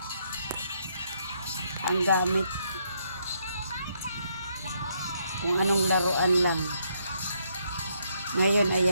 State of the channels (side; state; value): both; inverted; correlation -0.73